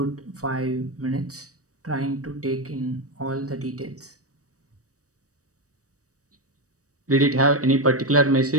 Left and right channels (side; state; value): left; late; 0.66 ms